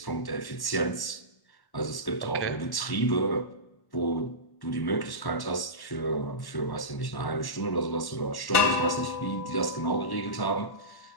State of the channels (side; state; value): right; late; 1.1 ms